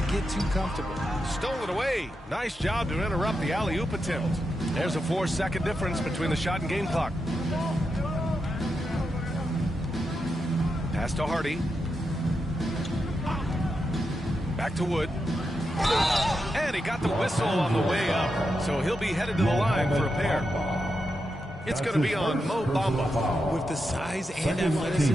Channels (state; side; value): normal; both; correlation 0.86